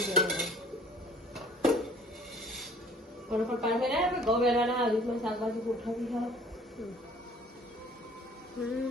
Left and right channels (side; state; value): both; normal; correlation 0.53